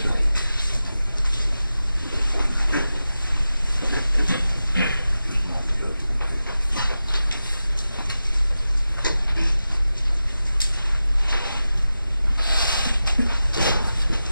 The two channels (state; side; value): inverted; both; correlation -0.93